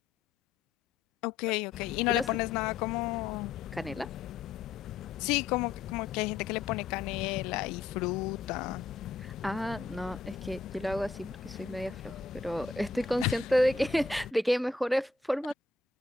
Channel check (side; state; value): right; quieter; 4.2 dB